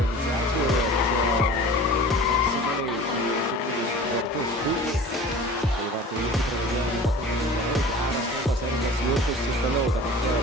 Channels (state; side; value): normal; both; correlation 0.40